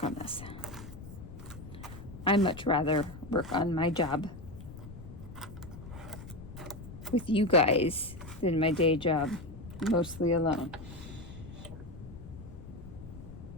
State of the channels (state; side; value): noise; left; rumble, 13 dB below the sound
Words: on this. I much rather work on my job with you guys than my day job mostly alone.